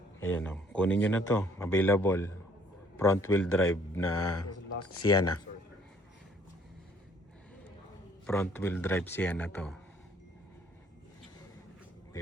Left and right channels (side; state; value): both; normal; correlation 0.61